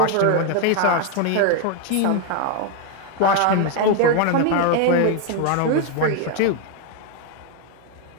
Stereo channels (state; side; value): different; both; correlation 0.01